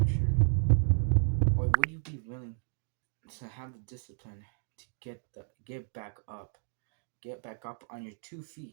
Or would you be willing to have the discipline to get back up on your 2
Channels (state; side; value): silent; left; digital silence